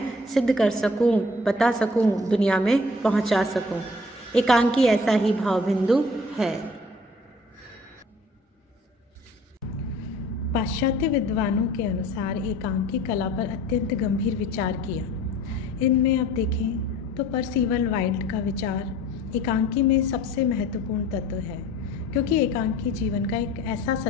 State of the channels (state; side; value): normal; both; correlation 0.50